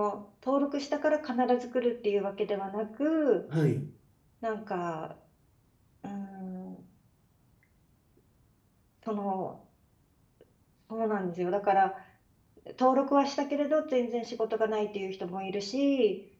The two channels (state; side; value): identical; both; correlation 1.00